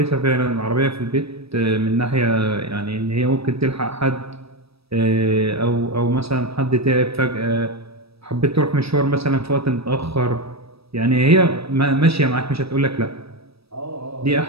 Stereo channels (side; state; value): left; late; 0.77 ms